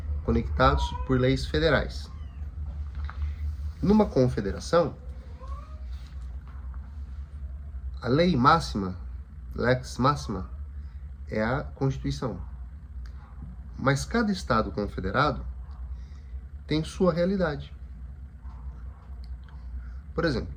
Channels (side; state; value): both; identical; correlation 1.00